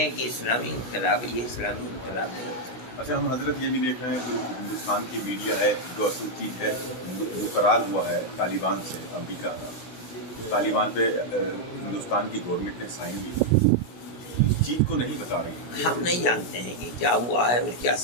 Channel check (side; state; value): right; late; 16 ms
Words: کہ اسلامی انقلاب ہے. یہ اسلامی انقلاب نہیں ہوتا. اچھا، ہم حضرت یہ بھی دیکھ رہے ہیں کہ ہندوستان کی میڈیا ہے جو اصل چیز ہے وہ قرار ہوا ہے طالبان سے، امریکہ کا. طالبان پہ ہندوستان کی گورنمنٹ نے سائن کی، اس چیز کو نہیں بتا رہی. ہم نہیں جانتے ہیں کہ کیا ہوا ہے اور کیا